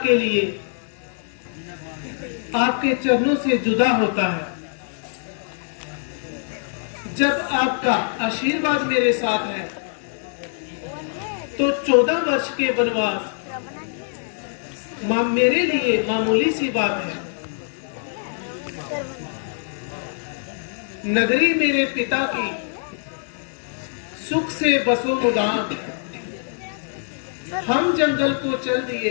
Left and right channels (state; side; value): silent; right; 63 dB below the other